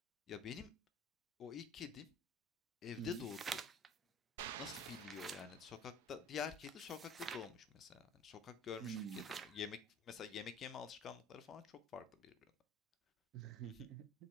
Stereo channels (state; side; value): normal; both; correlation 0.47